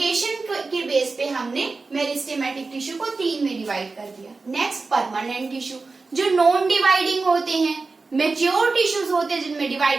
के बेस पे हमने मेरिस्टेमेटिक टिश्यू को तीन में डिवाइड कर दिया। नेक्स्ट परमानेंट टिश्यू जो नॉन डिवाइडिंग होते हैं, मेच्योर टिश्यूज होते हैं जिनमें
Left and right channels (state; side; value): quieter; left; 4.0 dB